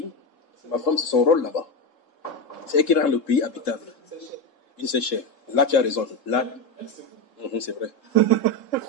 C'est ma femme, c'est son rôle là-bas. C'est elle qui rend le pays habitable. Une seule chair. Là, tu as raison. Là, c'est vrai.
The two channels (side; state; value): right; late; 3.7 ms